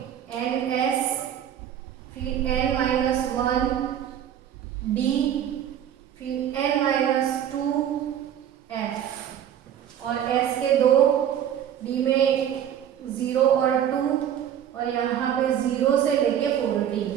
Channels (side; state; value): left; quieter; 10.0 dB